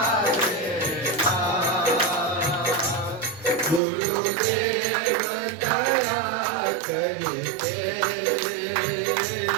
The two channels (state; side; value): drops out; left; at 3.8 s